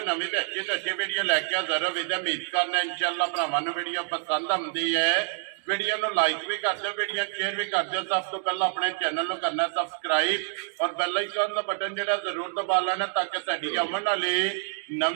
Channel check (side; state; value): left; silent; 60 dB below the other